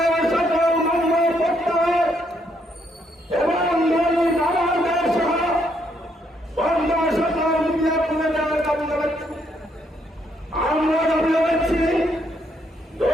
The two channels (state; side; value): normal; both; correlation 0.73